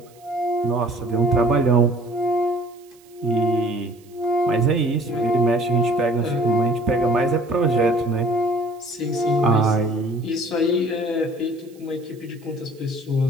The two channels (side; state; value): right; noise; hiss, 29 dB below the sound